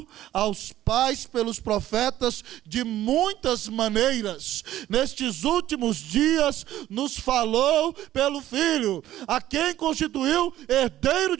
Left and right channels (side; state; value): left; quieter; 13.5 dB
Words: aos pais pelos profetas de muitas maneiras, nestes últimos dias nos falou pelo Filho, a quem constituiu herdeiro